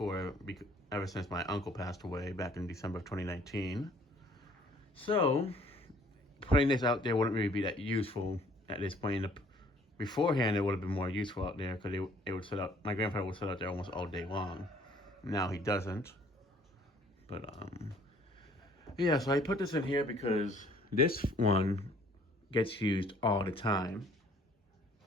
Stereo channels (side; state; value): both; normal; correlation 0.58